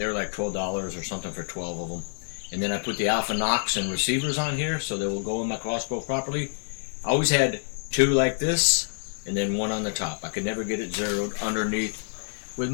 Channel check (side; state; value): right; silent; digital silence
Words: like $12 or something for 12 of them. And then I put the Alpha Nox and receivers on here so they will go in my crossbow properly. I always had 2 like this and then 1 on the top. I could never get it zeroed underneath with